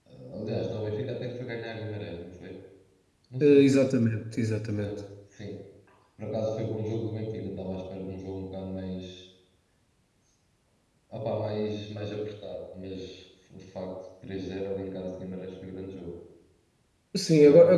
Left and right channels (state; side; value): identical; both; correlation 1.00